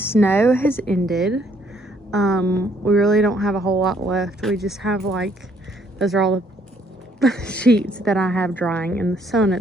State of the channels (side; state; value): both; normal; correlation 0.67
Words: has ended. We really don't have a whole lot left. We just have like, those are all the sheets that I have drying in the sun